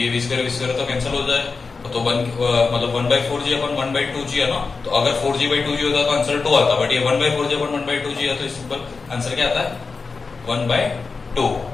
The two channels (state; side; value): quieter; right; 4.5 dB